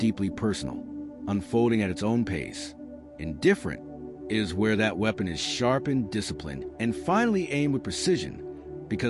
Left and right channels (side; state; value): both; identical; correlation 1.00